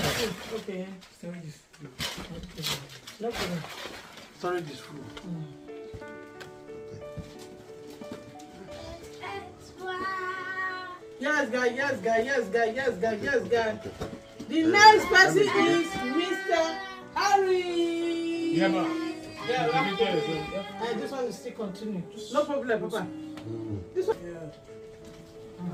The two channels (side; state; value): both; identical; correlation 1.00